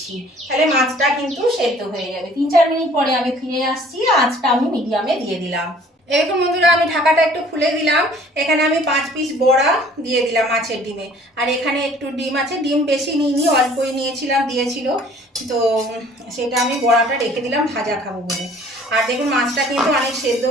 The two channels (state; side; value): normal; both; correlation 0.53